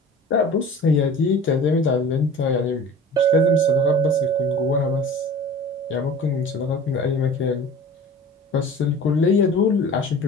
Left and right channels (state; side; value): normal; both; correlation 0.40